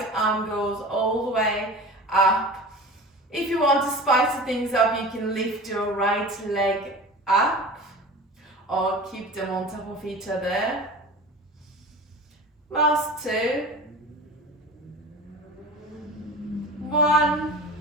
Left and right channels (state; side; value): normal; both; correlation 0.35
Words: arm goes all the way up. If you want to spice things up, you can lift your right leg up or keep them on top of each other. Last 2. 1.